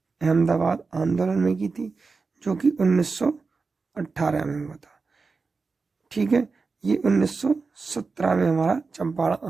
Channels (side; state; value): left; quieter; 4.4 dB